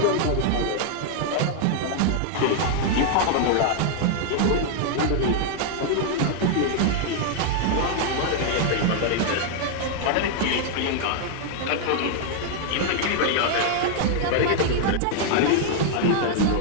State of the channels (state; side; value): different; both; correlation 0.00